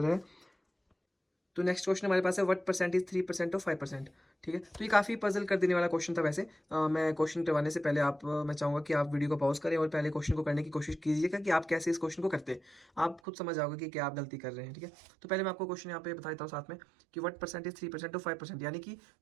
है। तो नेक्स्ट क्वेश्चन हमारे पास है व्हाट परसेंटेज 3% और 5%, ठीक है। तो ये काफ़ी पजल कर देने वाला क्वेश्चन था वैसे। मैं क्वेश्चन करवाने से पहले मैं चाहूँगा कि आप वीडियो को पॉज करें और पहले क्वेश्चन को करने की कोशिश कीजिएगा कि आप कैसे इस क्वेश्चन को करते हैं। आप खुद समझ जाओगे कि क्या आप गलती कर रहे हैं, ठीक है। तो पहले मैं आपको क्वेश्चन यहाँ पे बता देता हूँ साथ में कि व्हाट परसेंटेज 3% और 5%, यानी कि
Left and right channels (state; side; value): drops out; left; at 13.2 s